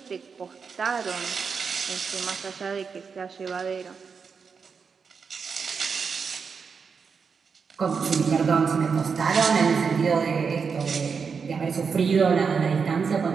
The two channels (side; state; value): left; quieter; 5.7 dB